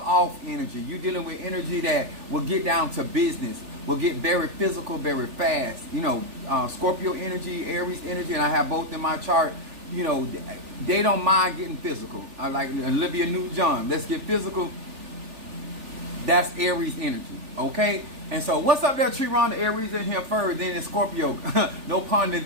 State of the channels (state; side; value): late; left; 3.4 ms